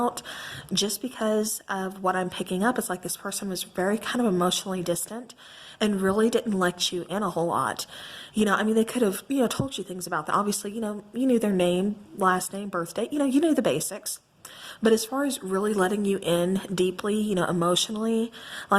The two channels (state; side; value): identical; both; correlation 1.00